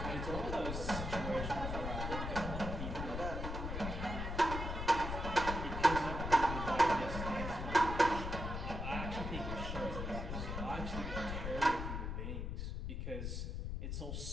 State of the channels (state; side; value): noise; left; rumble, 4 dB below the sound